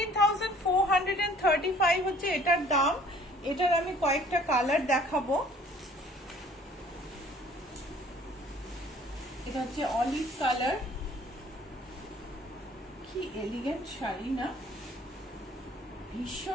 হচ্ছে এটার দাম। এটার আমি কয়েকটা কালার দেখাবো। এটা হচ্ছে অলিভ কালার, কি এলিগেন্ট শাড়ি না,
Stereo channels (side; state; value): both; normal; correlation 0.54